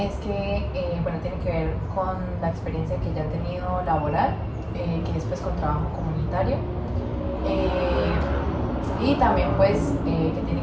que, bueno, tiene que ver con la experiencia que ya he tenido laboral, que es pues con trabajo comunitario. Y también pues que tiene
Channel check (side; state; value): both; identical; correlation 1.00